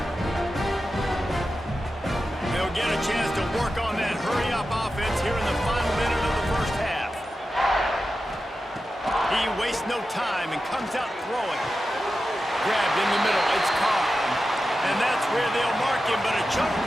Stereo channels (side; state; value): both; normal; correlation 0.92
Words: Get a chance to work on that hurry-up offense here in the final minute of the first half. He wastes no time and comes out throwing. Grabbed in the middle, it's Carr. And that's where they'll mark him, but a chunk